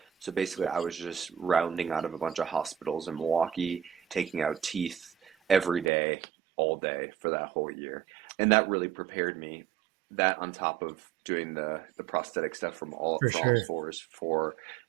So basically, I was just rounding out of a bunch of hospitals in Milwaukee, taking out teeth every day, all day for that whole year. And that really prepared me. That on top of doing the prosthetic stuff For for all sure. fours for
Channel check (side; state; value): left; drops out; at 5.9 s